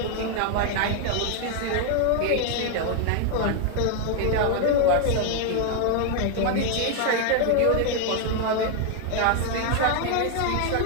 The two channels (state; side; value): different; both; correlation 0.00